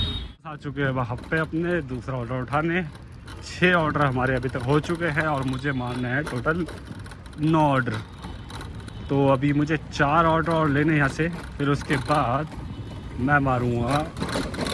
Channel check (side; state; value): both; identical; correlation 1.00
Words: आ चुके हैं वहाँ पे अपने दूसरा ऑर्डर उठाने। 6 ऑर्डर हमारे अभी तक हो चुके हैं और मुझे मारना है टोटल 9 ऑर्डर। तो अभी मुझे 4 ऑर्डर और लेने यहाँ से, फिर उसके बाद मैं मारूँगा